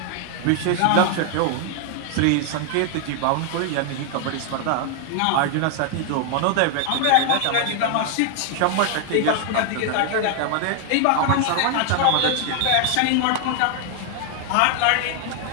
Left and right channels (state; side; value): different; both; correlation 0.00